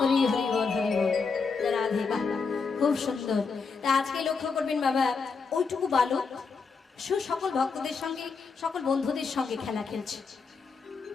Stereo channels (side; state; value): right; quieter; 5.0 dB